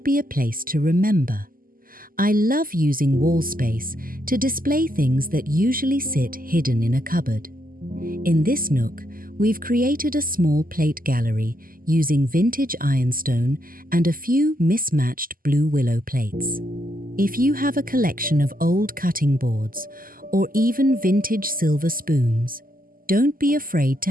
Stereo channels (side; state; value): left; late; 0.41 ms